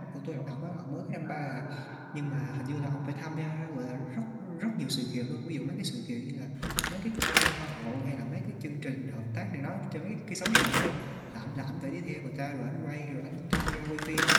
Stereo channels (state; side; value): identical; both; correlation 1.00